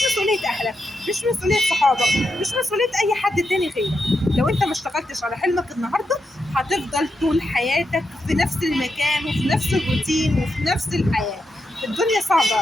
مسؤولية اهلك، مش مسؤولية صحابك، مش مسؤولية اي حد تاني غيرك. لو انت ما اشتغلتش على حلمك النهاردة هتفضل طول حياتك في نفس المكان وفي نفس الروتين وفي نفس الحياة. الدنيا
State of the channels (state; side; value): normal; both; correlation 0.85